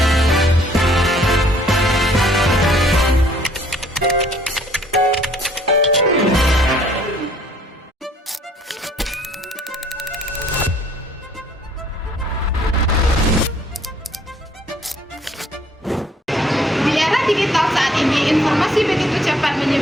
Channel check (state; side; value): normal; both; correlation 0.60